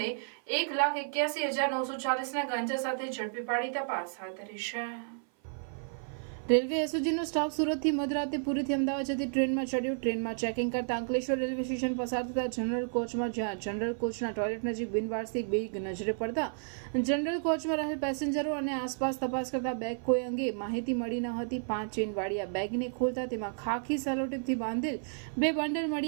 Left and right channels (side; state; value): left; silent; 56 dB below the other